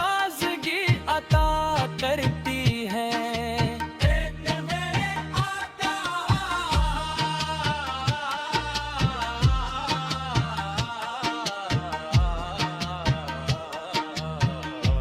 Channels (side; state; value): both; identical; correlation 1.00